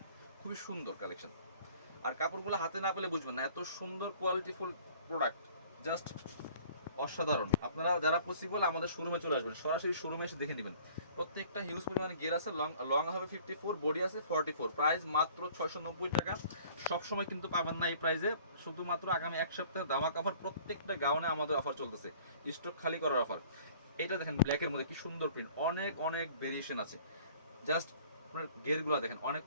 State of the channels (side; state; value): both; inverted; correlation -0.52